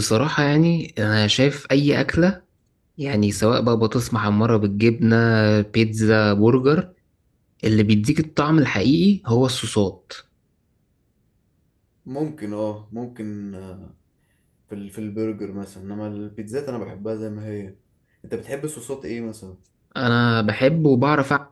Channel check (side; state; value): both; identical; correlation 1.00